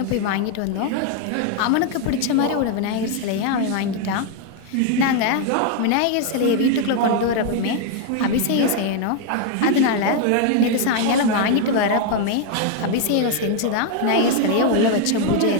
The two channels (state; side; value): different; both; correlation 0.00